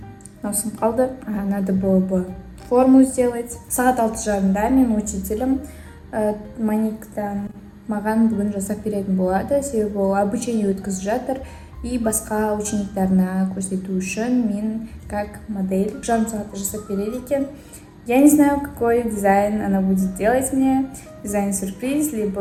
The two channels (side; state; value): both; identical; correlation 1.00